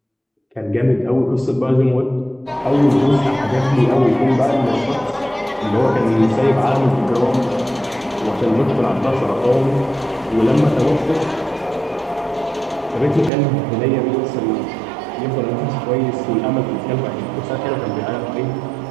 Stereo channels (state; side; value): drops out; left; at 13.3 s